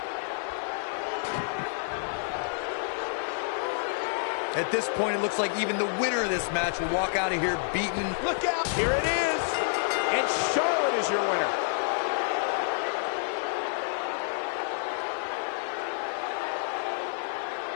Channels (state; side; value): silent; right; 59 dB below the other